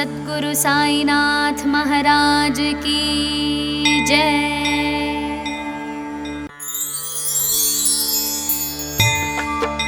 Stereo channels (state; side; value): identical; both; correlation 1.00